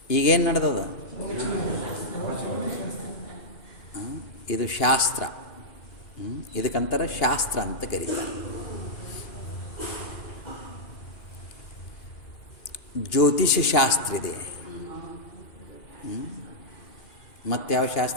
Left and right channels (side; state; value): right; late; 2.8 ms